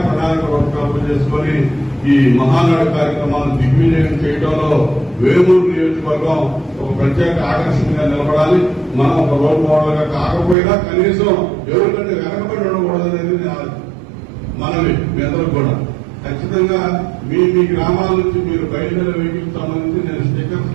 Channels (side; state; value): left; drops out; at 10.6 s